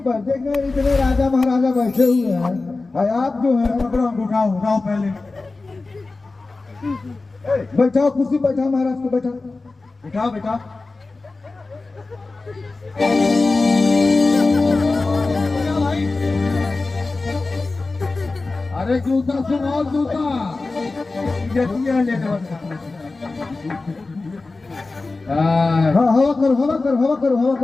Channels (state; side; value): quieter; right; 3.5 dB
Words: देख रहे हैं, इतने राजा महाराजा बैठे हुए हैं, और आप जो है पकड़ो, उठाओ उठाओ पहले। बैठाओ कुर्सी, बैठाओ महाराज को, बैठाओ। उठाओ बेटा। अरे जूता सुनाओ, जूता हाँ हवा करो, हवा करो, हवा करो, हवा